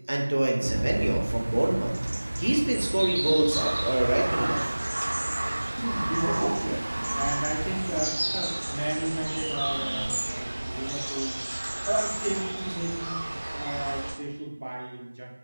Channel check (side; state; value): both; inverted; correlation -1.00